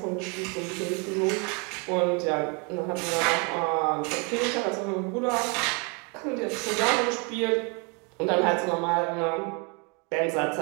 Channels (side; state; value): left; quieter; 33.0 dB